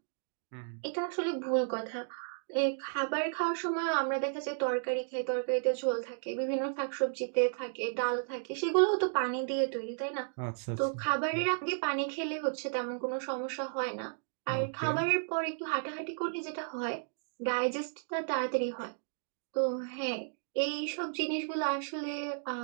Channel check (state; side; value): silent; left; digital silence